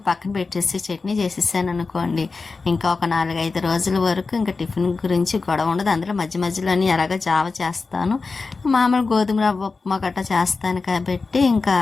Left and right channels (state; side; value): quieter; right; 4.2 dB